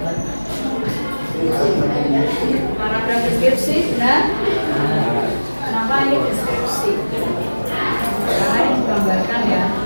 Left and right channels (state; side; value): inverted; both; correlation -1.00